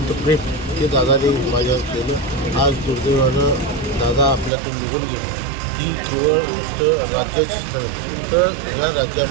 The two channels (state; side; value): drops out; left; at 4.5 s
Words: प्रेम हे दादाने माझ्यावर केलं. आज दुर्दैवानं दादा आपल्यातून निघून गेले. ही केवळ नुसतं राज्याचीच नव्हे तर ह्या